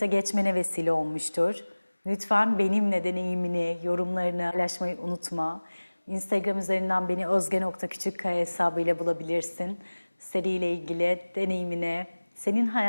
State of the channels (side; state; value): both; inverted; correlation -1.00